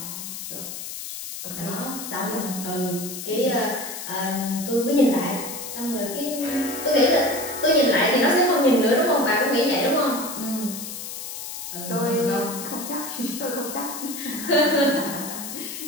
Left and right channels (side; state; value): left; noise; hiss, 8 dB below the sound